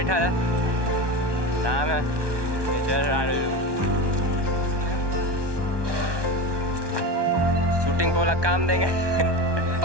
है, नाम है शूटिंग को वाला काम देंगे।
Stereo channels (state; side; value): late; left; 1.2 ms